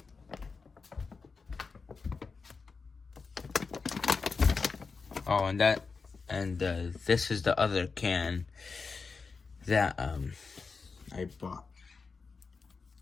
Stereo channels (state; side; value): quieter; right; 4.7 dB